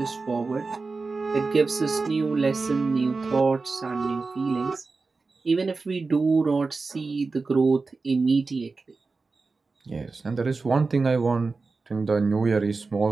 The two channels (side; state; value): left; quieter; 4.0 dB